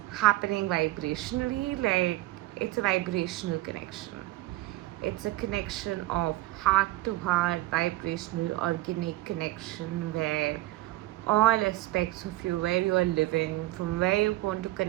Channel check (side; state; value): left; quieter; 18.1 dB